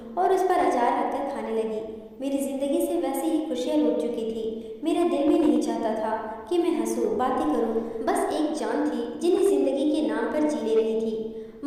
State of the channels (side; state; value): both; identical; correlation 1.00